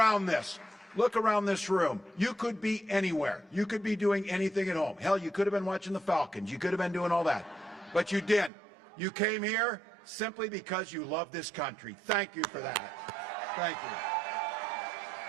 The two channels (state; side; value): drops out; left; at 8.5 s